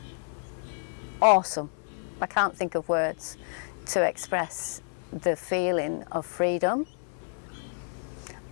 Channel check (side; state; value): right; silent; 58 dB below the other